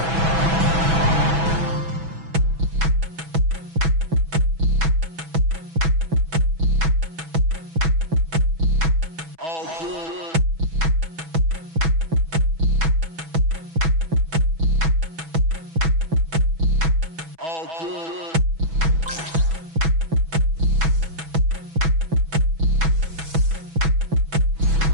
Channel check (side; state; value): left; late; 6.1 ms